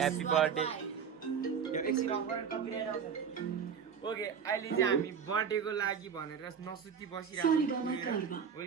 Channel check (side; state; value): left; quieter; 7.1 dB